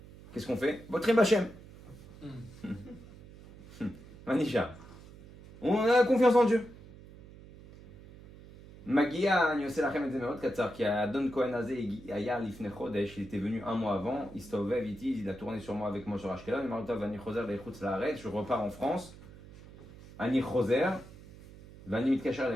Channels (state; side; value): noise; right; hum, 19 dB below the sound